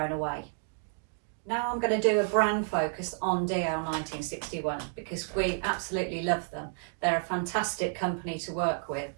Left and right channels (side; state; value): left; silent; digital silence